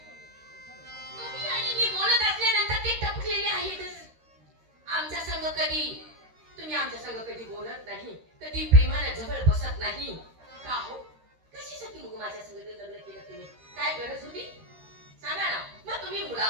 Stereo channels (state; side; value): late; left; 13 ms